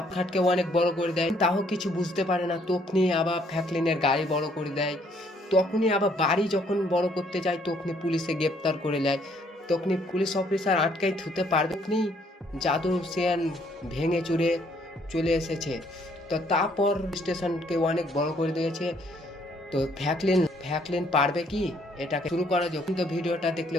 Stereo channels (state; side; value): normal; both; correlation 0.66